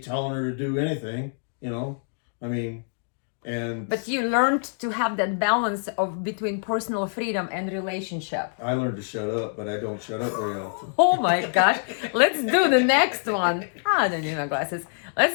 her to do anything, I mean. But you learned to have that balance of between personal freedom and relationship. I learned to shut up, but I don't shut up very often. Oh my gosh. Let's do the next one. I don't need my glasses. Let's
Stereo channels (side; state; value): right; silent; digital silence